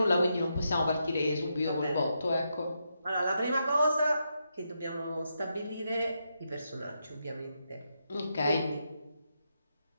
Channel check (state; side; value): inverted; both; correlation -0.83